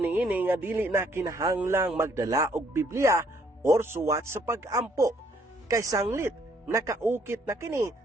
nga dili na kinahanglang magdala og Biblia or suwat sa pag-ampo, kay sanglit nakaukit na kini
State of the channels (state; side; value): normal; both; correlation 0.66